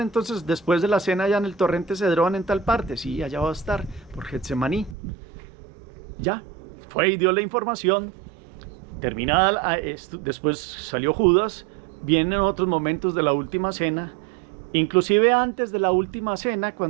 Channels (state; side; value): drops out; left; at 5.0 s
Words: entonces después de la cena allá en el torrente Cedrón en tal parte? Sí, allá va a estar, por Getsemaní. Ya, fue y dio la información. Terminada después salió Judas, vienen otros momentos de la última cena, inclusive antes de la última cena,